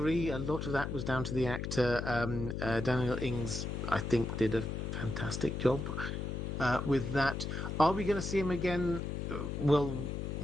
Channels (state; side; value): noise; left; hum, 3 dB below the sound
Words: a lot of that was down to the actor. Daniel Ings, I think, did a fantastic job with that. Are we going to see him again? Well,